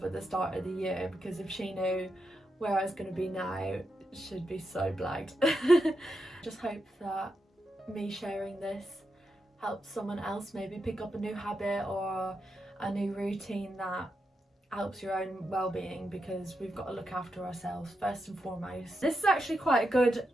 at the start of the year, because if she knew where I was going to be now, she'd be so blagged. Just hope that me sharing this helps someone else maybe pick up a new habit or a new routine that helps your own well-being, because we've got to look after ourselves first and foremost. This is actually quite a good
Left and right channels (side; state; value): both; normal; correlation 0.86